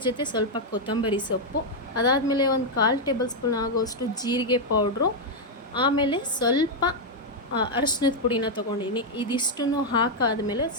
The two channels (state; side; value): normal; both; correlation 0.00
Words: ಜೊತೆ ಸ್ವಲ್ಪ ಕೊತ್ತಂಬರಿ ಸೊಪ್ಪು, ಅದಾದಮೇಲೆ ಒಂದು 1/4 ಟೇಬಲ್ ಸ್ಪೂನ್ ಆಗೋಷ್ಟು ಜೀರಿಗೆ ಪೌಡ್ರು, ಆಮೇಲೆ ಸ್ವಲ್ಪ ಅರಶಿನದ ಪುಡಿನ ತೊಗೊಂಡಿದ್ದೀನಿ. ಇದಿಷ್ಟನ್ನು ಹಾಕಾದ್ಮೇಲೆ